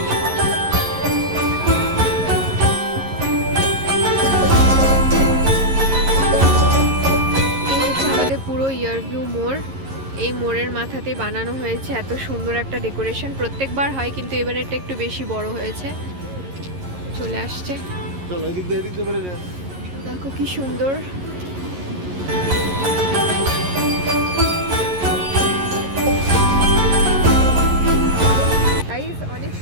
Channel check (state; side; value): late; left; 11 ms